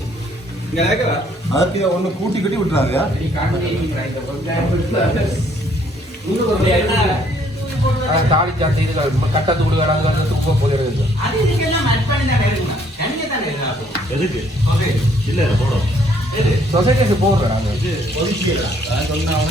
இங்க இருக்கா அதுக்கு ஒண்ணு கூட்டி கட்டி விட்டுறாங்க. நீ காண்டி இந்த வெங்காயம் தாலி சாத்தி இது கட்டத்து கொடுக்கறாங்க வந்து துப்ப போயிடுது. அது இதுக்கெல்லாம் ஆட் பண்ணி தான் எடுக்கணும். தனியா தான் எடுக்கணும். எதுக்கு? ஓகே. இல்ல போறோம். எது? சொசைட்டிக்கு போறோம் நாங்க. இது ஒதுக்கிடா. நான் சொன்னா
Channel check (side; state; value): both; normal; correlation 0.64